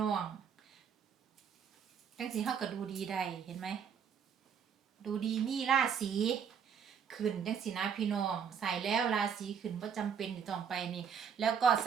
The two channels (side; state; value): left; quieter; 7.4 dB